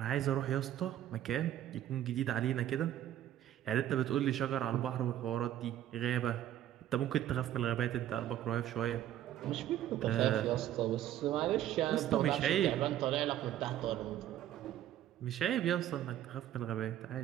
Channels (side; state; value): left; quieter; 12.1 dB